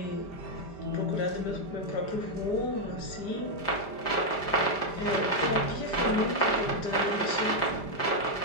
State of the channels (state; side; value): late; right; 5.0 ms